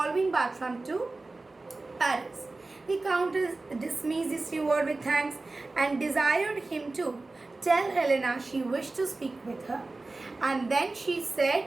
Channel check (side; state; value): left; quieter; 3.3 dB